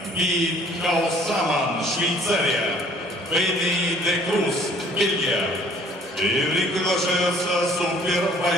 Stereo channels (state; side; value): normal; both; correlation 0.56